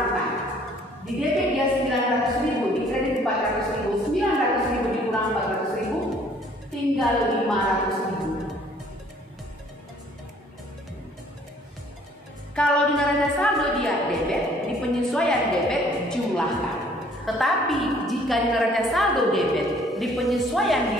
Di debit dia 900.000, di kredit 400.000. 900.000 dikurang 400.000 tinggal 500.000. Kalau di neraca saldo dia debit, di penyesuaian debit jumlahkan. Tetapi jika di neraca saldo debit, di penyesuaian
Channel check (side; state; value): both; normal; correlation 0.58